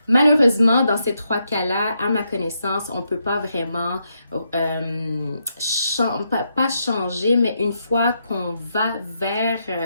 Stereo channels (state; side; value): inverted; both; correlation -0.80